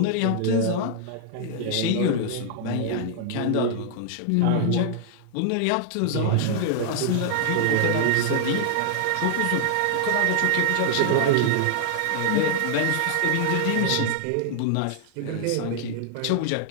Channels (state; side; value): different; both; correlation 0.00